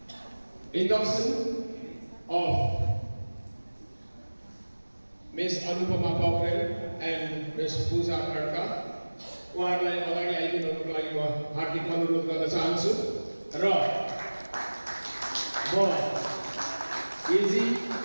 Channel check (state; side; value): inverted; both; correlation -1.00